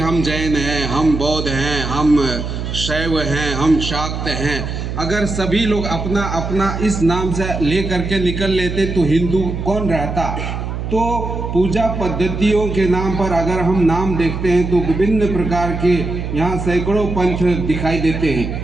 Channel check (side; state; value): right; noise; hum, 5 dB below the sound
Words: जैन हैं, हम बौद्ध हैं, हम शैव हैं, हम शाक्त हैं। अगर सभी लोग अपना अपना इस नाम से ले करके निकल लेते तो हिंदू कौन रहता? तो पूजा पद्धतियों के नाम पर अगर हम नाम देखते हैं तो विभिन्न प्रकार के यहाँ सैकड़ों पंथ दिखाई देते हैं,